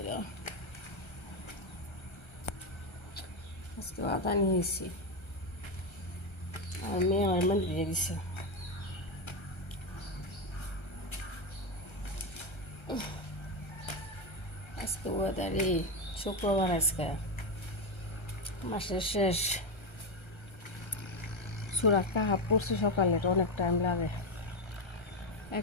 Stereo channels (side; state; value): right; late; 1.3 ms